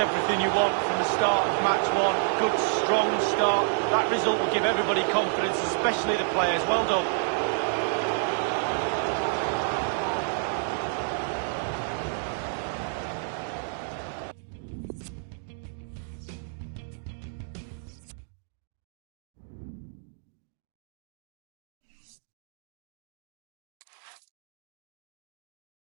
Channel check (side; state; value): left; silent; digital silence